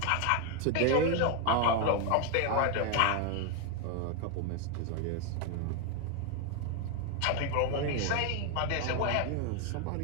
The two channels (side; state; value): both; different; correlation 0.01